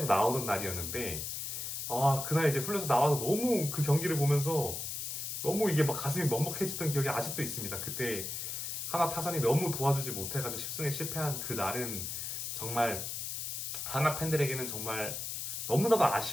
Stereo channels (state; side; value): noise; left; hiss, 4 dB below the sound